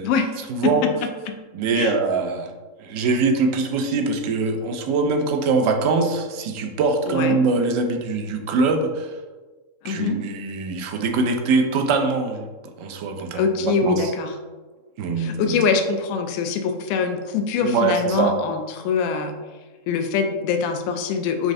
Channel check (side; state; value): right; late; 3.7 ms